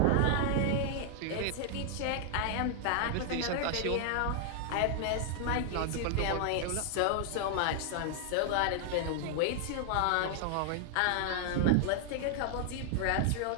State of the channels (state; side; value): different; both; correlation 0.00